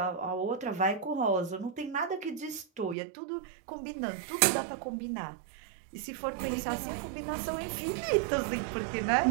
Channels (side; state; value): left; drops out; at 3.0 s